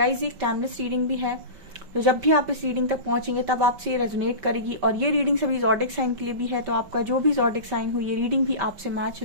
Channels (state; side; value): late; left; 5.2 ms